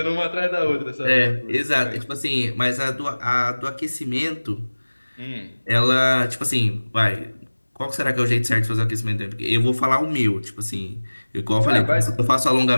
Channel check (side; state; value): both; inverted; correlation -1.00